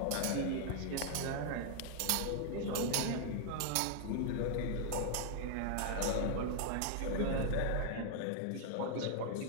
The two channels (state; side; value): different; both; correlation 0.00